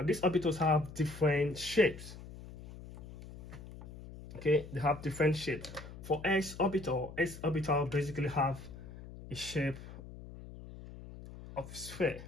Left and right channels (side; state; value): left; noise; hum, 14 dB below the sound